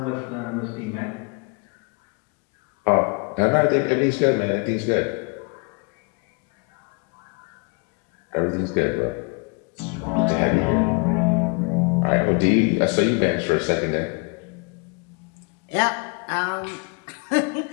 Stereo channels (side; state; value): right; quieter; 34.3 dB